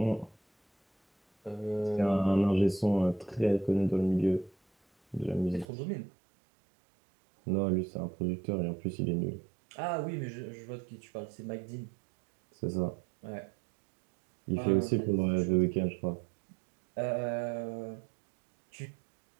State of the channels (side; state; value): left; drops out; at 5.7 s